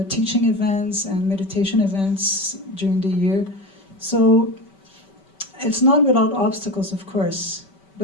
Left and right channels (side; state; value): right; late; 5.2 ms